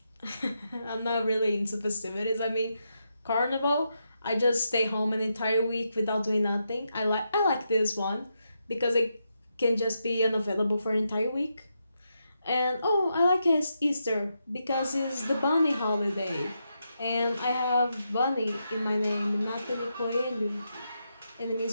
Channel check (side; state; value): both; inverted; correlation -0.83